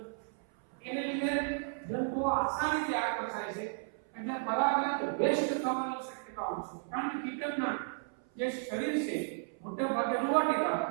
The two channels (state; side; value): silent; left; 55 dB below the other